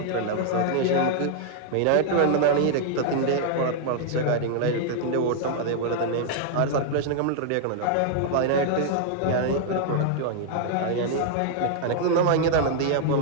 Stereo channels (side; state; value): both; different; correlation -0.01